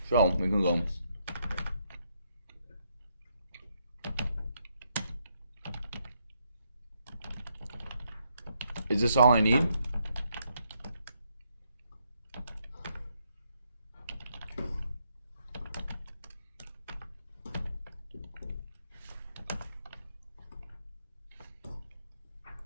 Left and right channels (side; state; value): both; inverted; correlation -0.76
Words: So we can go. Is this all I need?